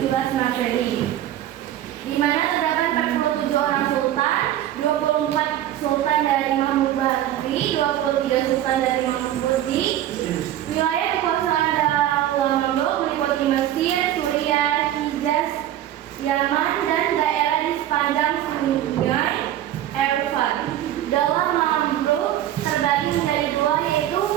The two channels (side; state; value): left; quieter; 12.3 dB